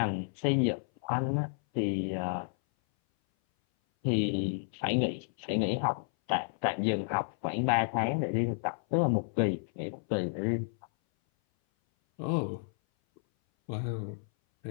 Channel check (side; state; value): right; silent; 57 dB below the other